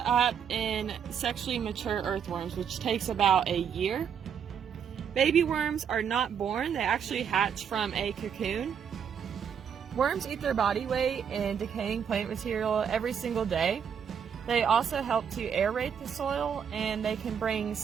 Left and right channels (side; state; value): left; quieter; 7.6 dB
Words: up in sexually mature earthworms, which takes about a year. Baby worms are not born, they actually hatch from a cocoon. Worms eat their body weight in decaying plant material every single day. They also help to aerate the soil, and they can bring